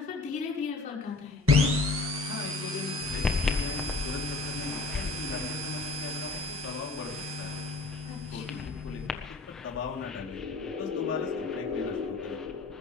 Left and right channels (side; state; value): right; quieter; 3.6 dB